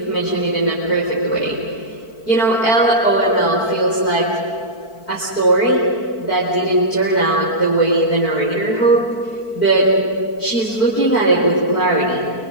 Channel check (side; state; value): right; late; 4.5 ms